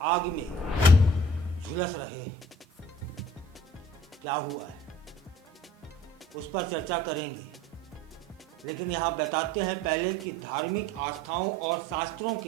आग में झुलस रहे हैं। क्या हुआ है उस पर चर्चा करेंगे, लेकिन यहाँ बताते हैं पहले कि धार्मिक आस्थाओं और शास्त्रों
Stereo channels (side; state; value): both; normal; correlation 0.51